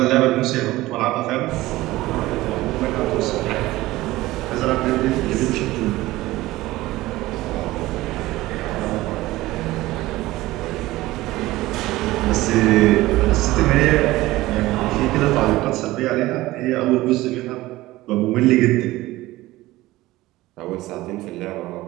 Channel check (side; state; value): left; quieter; 17.9 dB